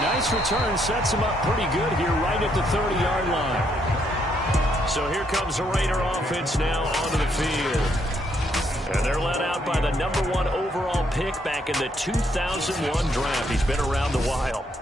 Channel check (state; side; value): normal; both; correlation 0.73